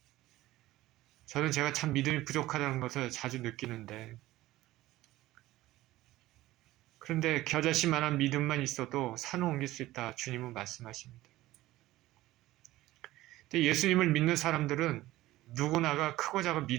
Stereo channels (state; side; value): quieter; left; 16.7 dB